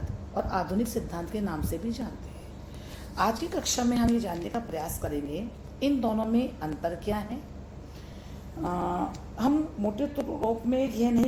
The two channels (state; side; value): identical; both; correlation 1.00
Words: और आधुनिक सिद्धांत के नाम से भी जानते हैं। आज की कक्षा में हम ये जानने का प्रयास करेंगे इन दोनों में अंतर क्या है। हम मोटे रूप में यह